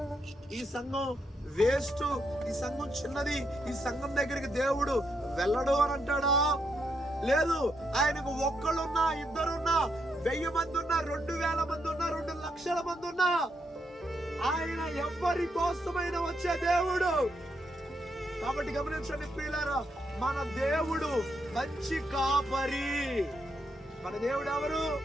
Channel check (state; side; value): normal; both; correlation 0.79